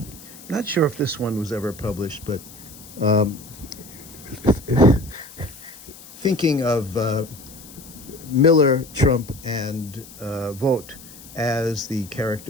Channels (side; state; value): left; noise; hiss, 18 dB below the sound